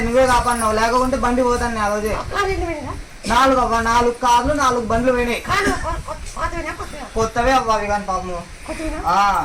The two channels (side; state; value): both; identical; correlation 1.00